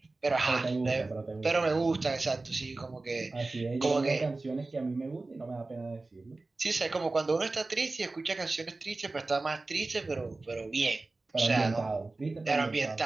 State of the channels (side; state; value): left; quieter; 3.3 dB